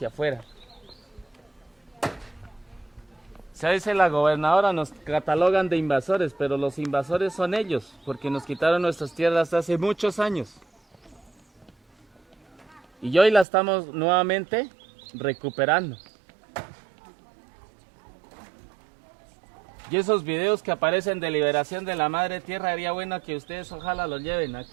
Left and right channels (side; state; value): left; drops out; at 13.5 s